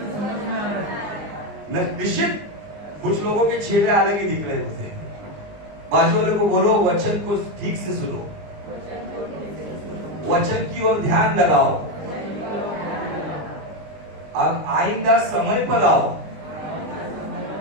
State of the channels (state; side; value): late; left; 20 ms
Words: निश्चित कुछ लोगों के चेहरे अलग ही दिख रहे हैं मुझे। बाजू वाले को बोलो वचन को ठीक से सुनो, वचन की ओर ध्यान लगाओ, अब आइंदा समय पर आओ।